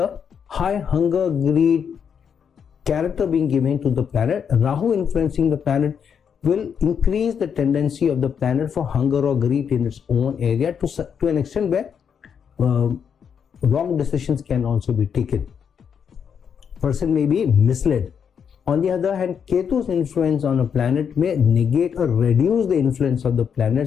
high hunger, greed, character being given to the planet, Rahu influencing the planet will increase the tendency of the planet for hunger or greed in its own area to an extent where wrong decisions can also be taken. Person may be misled. On the other hand, Ketu's influence on a planet may negate or reduce the influence of the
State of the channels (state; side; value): quieter; right; 7.3 dB